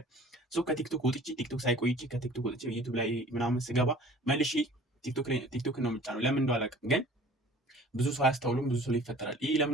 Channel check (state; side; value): normal; both; correlation 0.48